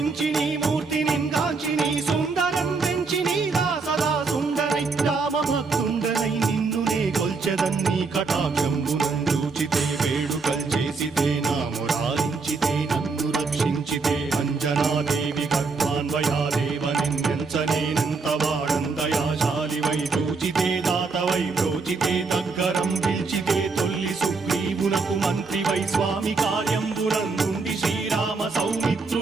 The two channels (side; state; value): left; quieter; 4.4 dB